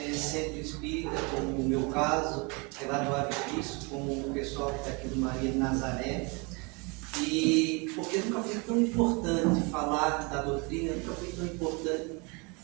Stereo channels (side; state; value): left; quieter; 30.0 dB